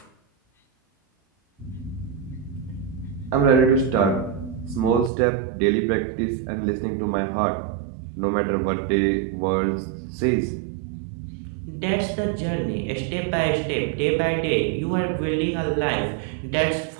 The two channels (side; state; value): left; drops out; at 5.1 s